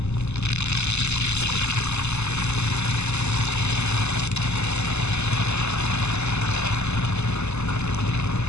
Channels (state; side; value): late; right; 0.81 ms